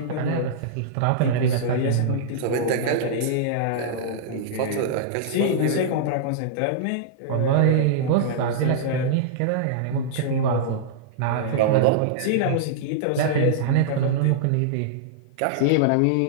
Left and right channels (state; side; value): different; both; correlation -0.02